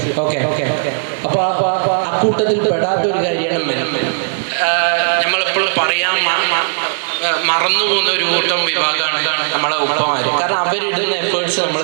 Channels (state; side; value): silent; left; digital silence